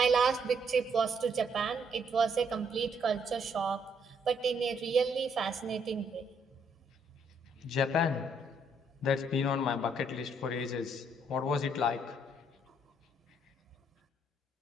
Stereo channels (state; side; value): normal; both; correlation 0.70